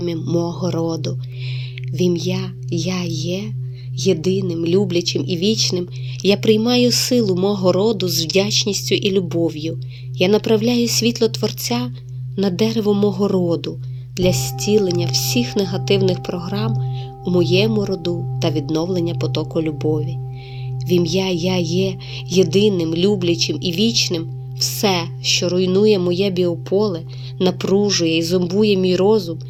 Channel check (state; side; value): identical; both; correlation 1.00